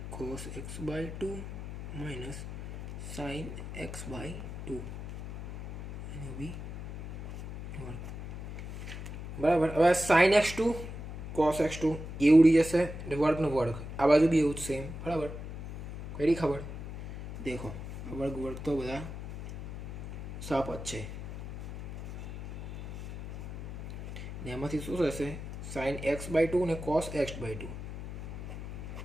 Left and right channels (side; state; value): left; noise; hum, 9 dB below the sound